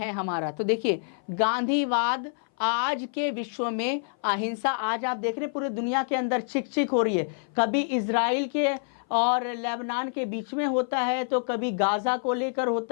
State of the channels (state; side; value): silent; right; 57 dB below the other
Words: हमारा। तो देखिए, गांधीवाद आज के विश्व में, अहिंसा आज आप देख रहे हैं पूरी दुनिया के अंदर चिक हो रही है। कभी इजराइल के और लेबनान के बीच में होता है, तो कभी गाजा को लेकर